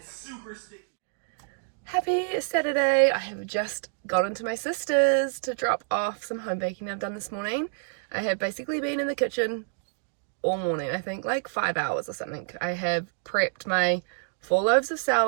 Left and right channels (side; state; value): left; silent; digital silence